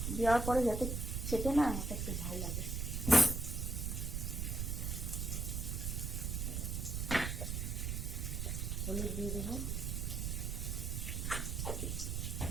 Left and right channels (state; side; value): noise; right; rumble, 1 dB below the sound